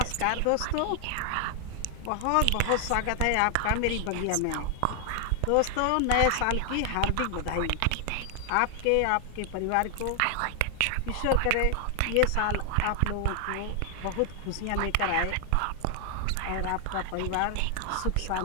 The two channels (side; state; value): both; different; correlation 0.00